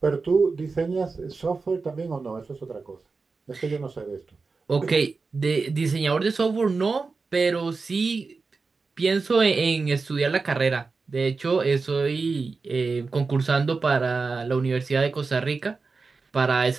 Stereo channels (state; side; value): quieter; left; 4.3 dB